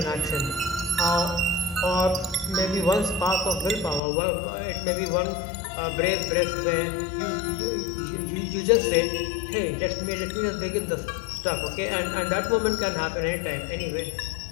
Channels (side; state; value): right; drops out; at 4.0 s